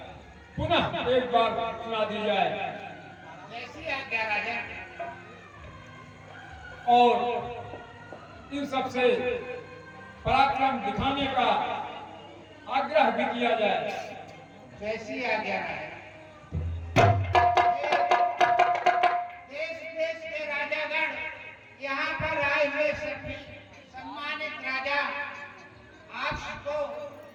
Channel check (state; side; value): identical; both; correlation 1.00